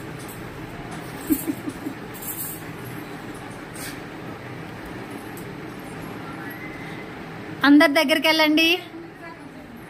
అందరి దగ్గరికి వెళ్ళండి,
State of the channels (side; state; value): both; identical; correlation 1.00